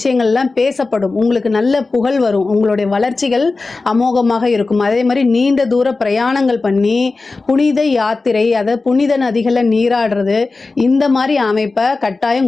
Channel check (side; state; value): right; quieter; 3.7 dB